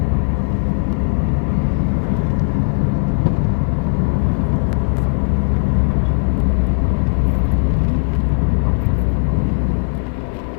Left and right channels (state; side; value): silent; right; 66 dB below the other